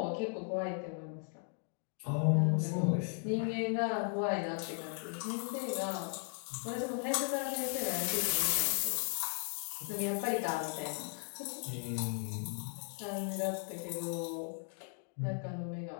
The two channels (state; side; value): silent; right; 53 dB below the other